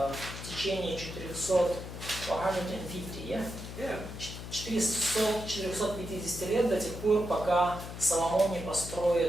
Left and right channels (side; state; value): left; noise; hum, 10 dB below the sound